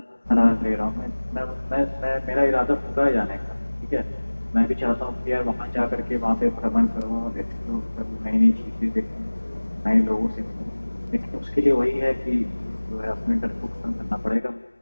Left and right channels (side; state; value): both; inverted; correlation -1.00